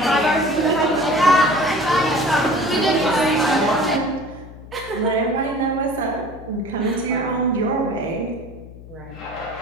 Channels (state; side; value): noise; left; hum, 17 dB below the sound